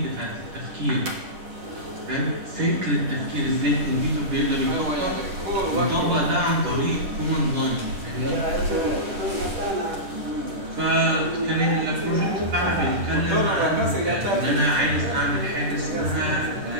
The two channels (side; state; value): left; late; 10 ms